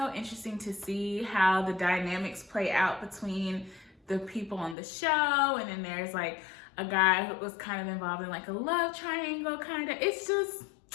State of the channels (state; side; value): drops out; right; at 4.8 s